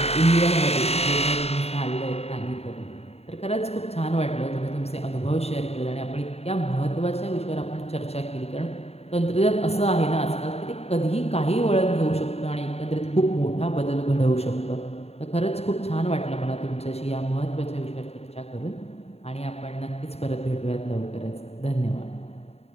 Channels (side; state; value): right; late; 0.30 ms